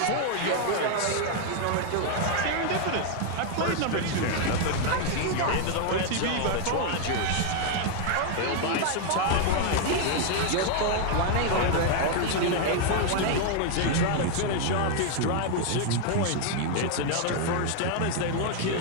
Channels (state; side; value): different; both; correlation 0.00